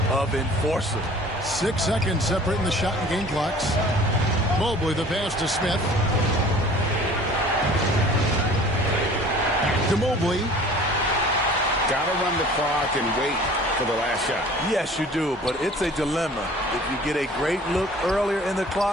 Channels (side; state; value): both; normal; correlation 0.47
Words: of enforcer. 6 seconds separating the shot and game clocks. Mobley, the pass to Smith. To Mobley. Got to run the clock and wait for the last shot. Yes, you do, but it's a dilemma. If you get a great look earlier in the